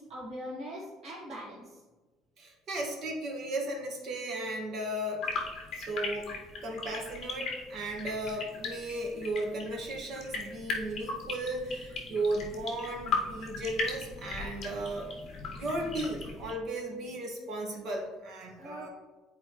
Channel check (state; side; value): normal; both; correlation 0.56